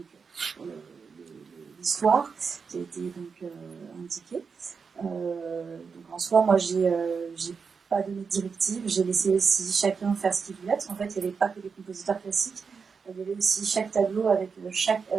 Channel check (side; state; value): left; quieter; 5.5 dB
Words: l'histoire qui a été donc indiquée. Donc en soi, moi, j'ai pas donné de directive, j'ai laissé aussi chacun faire ce qu'il voulait, parce qu'en fait, il n'y avait pas que des compositeurs classiques, il y avait aussi chaque tableau avec chaque